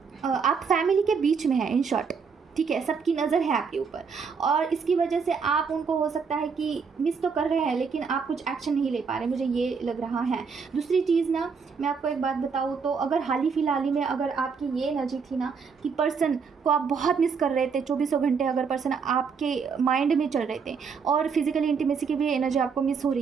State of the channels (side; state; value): left; quieter; 5.7 dB